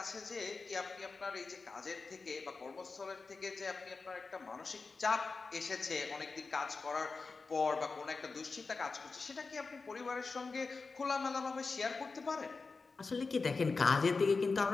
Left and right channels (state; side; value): quieter; right; 4.2 dB